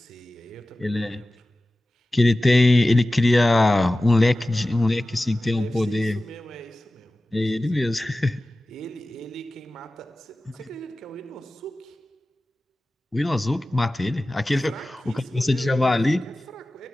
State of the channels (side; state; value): both; normal; correlation 0.96